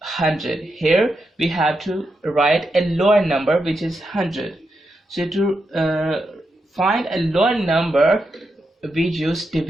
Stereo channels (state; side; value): normal; both; correlation 0.85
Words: 100. Here we have to write a lower number, which is 100. So to find a lower number, we use